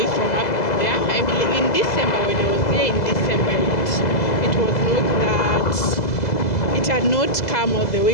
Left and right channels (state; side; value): late; right; 2.0 ms